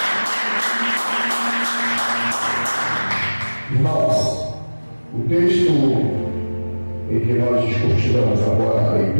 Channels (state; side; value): inverted; both; correlation -1.00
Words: Irmãos, o texto em que nós discutiremos agora na